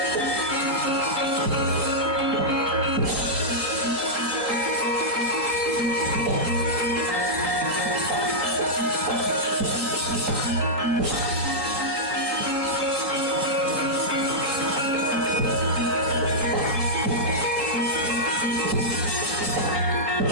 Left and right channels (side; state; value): left; late; 3.7 ms